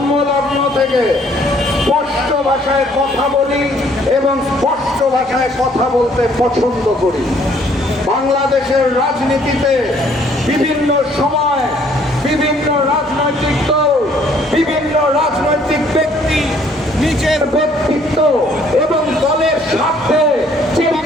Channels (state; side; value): normal; both; correlation 0.62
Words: থেকে স্পষ্ট ভাষায় কথা বলি এবং স্পষ্ট ভাষায় কথা বলতে পছন্দ করি। বাংলাদেশের রাজনীতিতে বিভিন্ন সময় বিভিন্ন রাজনৈতিক দল, বিভিন্ন রাজনৈতিক ব্যক্তি নিজের ব্যক্তিত্ব এবং দলের স্বার্থে